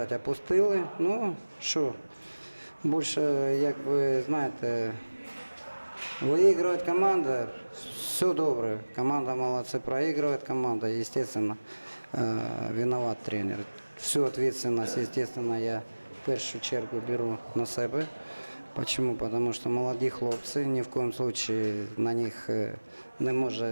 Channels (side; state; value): both; inverted; correlation -1.00